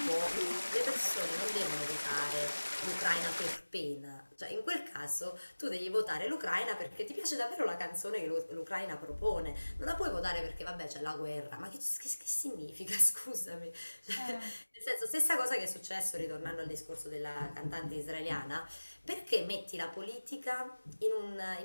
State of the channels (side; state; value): both; inverted; correlation -1.00